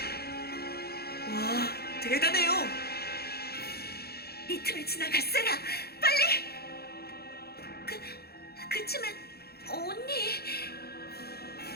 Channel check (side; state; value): right; late; 0.46 ms